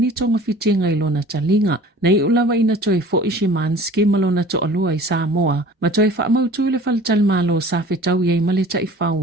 tonga fitinga i lona talinga na iulawa ina toi fo Ishimanski malona to alua I Sāmoa, ma toi whaamautu le faltalmalo sa whetau iei maleta I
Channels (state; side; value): normal; both; correlation 0.45